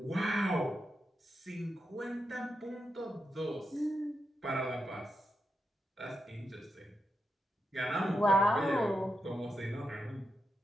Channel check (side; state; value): both; normal; correlation 0.87